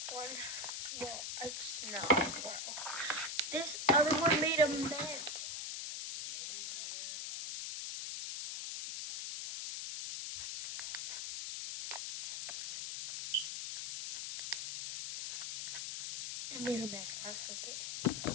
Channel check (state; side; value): noise; left; hiss, 4 dB below the sound